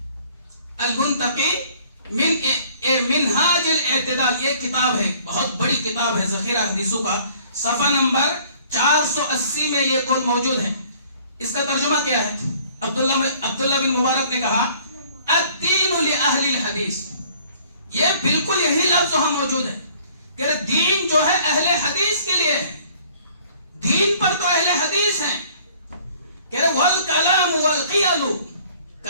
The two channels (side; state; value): both; inverted; correlation -0.56